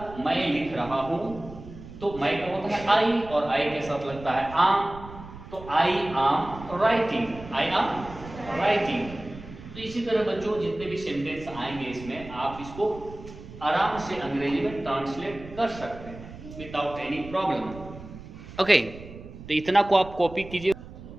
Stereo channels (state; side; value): noise; right; rumble, 15 dB below the sound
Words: मैं लिख रहा हूं, तो मैं का होता है आई और आई के साथ लगता है आम, तो आई आम राइटिंग, आई आम राइटिंग। तो इसी तरह बच्चों जितने भी सेंटेंस आएंगे इसमें आप इसको आराम से अंग्रेजी में ट्रांसलेट कर सकते हैं विदाउट एनी प्रॉब्लम। ओके, तो इतना को आप कॉपी कीजिए।